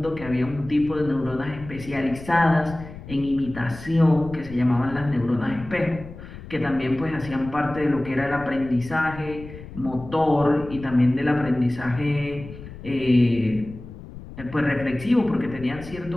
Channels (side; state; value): left; noise; rumble, 14 dB below the sound